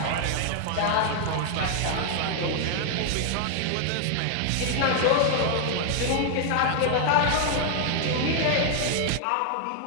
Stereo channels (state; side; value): different; both; correlation 0.00